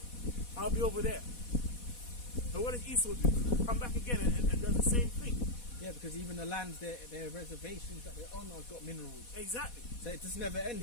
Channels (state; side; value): late; right; 4.1 ms